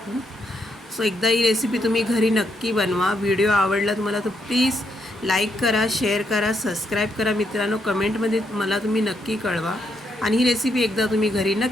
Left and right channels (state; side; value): normal; both; correlation 0.77